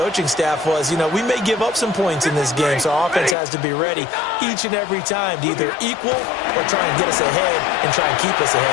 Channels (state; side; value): drops out; right; at 3.4 s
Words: staff was, we may give up some points in this game, so our offense has to be ready each and every time to either equal or try and get us ahead and try and keep us